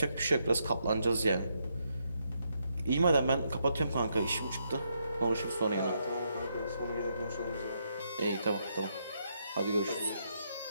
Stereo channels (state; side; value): inverted; both; correlation -0.78